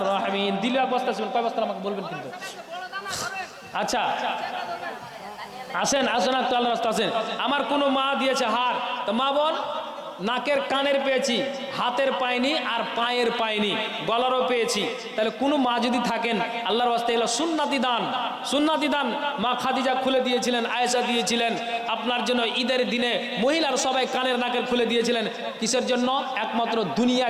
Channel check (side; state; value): both; identical; correlation 1.00